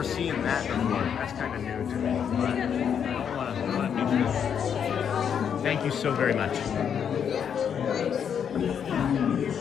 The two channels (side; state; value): right; quieter; 7.9 dB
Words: seeing that before. That's kind of new to me. But I don't want to be sure. Thank you so very much.